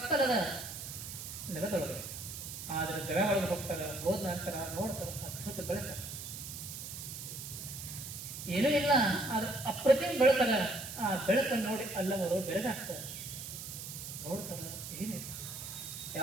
ನೆಲದೊಳಗೆ. ಆದ್ರೆ ಗವೆ ಒಳಗೆ ಹೋಗ್ತಾರ. ಹೋದ ನಂತರ ನೋಡ್ತಾರ ಅದ್ಭುತ ಬೆಳಕ, ಏನೂ ಇಲ್ಲ, ಆದ್ರೆ ಅಪ್ರತಿಮ ಬೆಳಕಲ್ಲ. ಆ ಬೆಳಕನ್ನು ನೋಡಿ ಅಲ್ಲವರು ಬೆಳಗಾಗ್ತಾರೆ. ನೋಡ್ತಾರ, ಏನಿಲ್ಲ,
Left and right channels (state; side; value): noise; right; hiss, 8 dB below the sound